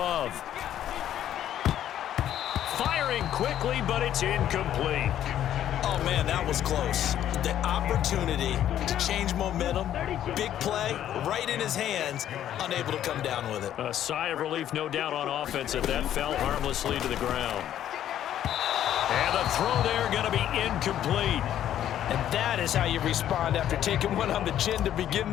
Firing quickly, but it's incomplete. Oh, man, that was close. The opportunity to change momentum, big play, right in his hands, unable to come down with it. A sigh of relief, no doubt, on offense if that fell harmlessly to the ground. And the throw there going to be incomplete. And that is how you respond after taking one on the chin to begin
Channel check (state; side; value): quieter; right; 11.2 dB